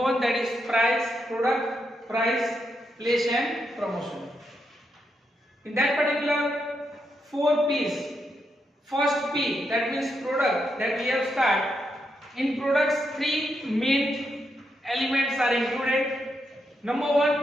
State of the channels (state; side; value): normal; both; correlation 0.82